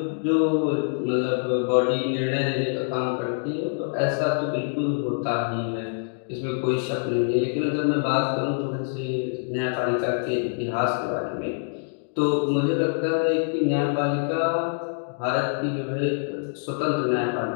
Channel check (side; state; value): right; silent; digital silence